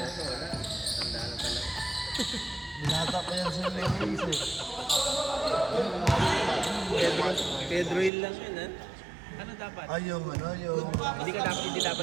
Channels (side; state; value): left; drops out; at 8.1 s